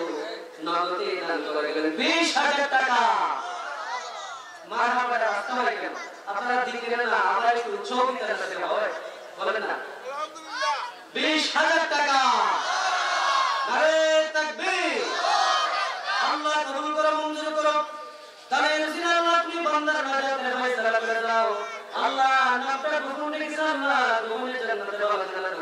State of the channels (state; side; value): identical; both; correlation 1.00